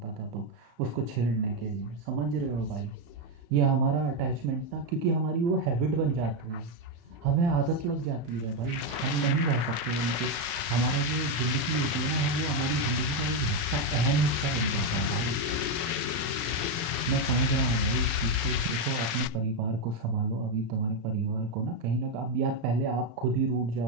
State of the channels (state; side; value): late; left; 35 ms